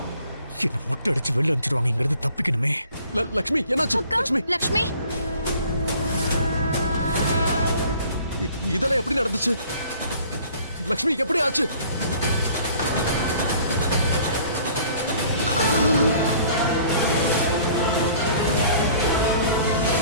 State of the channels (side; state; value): both; inverted; correlation -0.53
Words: என்ன மொட்டை அடிச்சு வெளில அனுப்பிச்சிருவாங்க. இங்க இருந்து தப்பிக்கணுமே. லக்ஷ்மி என்னாச்சு லக்ஷ்மி லக்ஷ்மி இதெல்லாம் எப்படி நடந்துச்சு லக்ஷ்மி எப்படி ஆச்சு